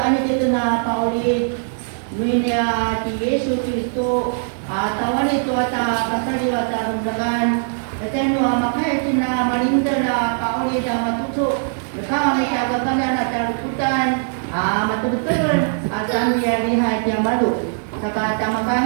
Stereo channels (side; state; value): left; silent; 65 dB below the other